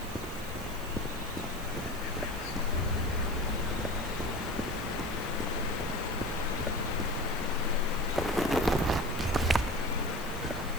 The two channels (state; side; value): noise; left; hiss, 17 dB below the sound